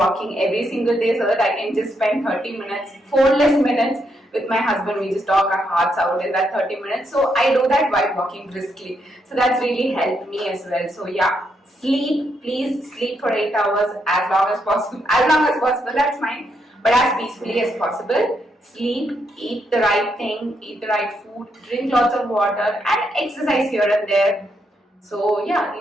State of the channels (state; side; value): normal; both; correlation 0.78